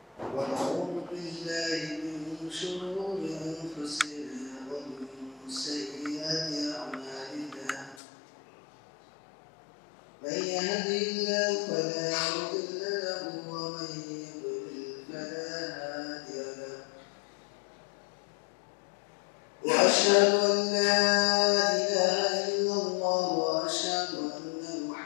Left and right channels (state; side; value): drops out; right; at 8.0 s